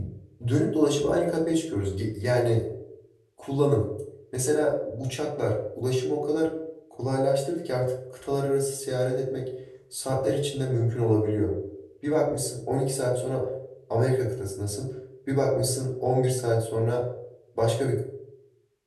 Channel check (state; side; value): identical; both; correlation 1.00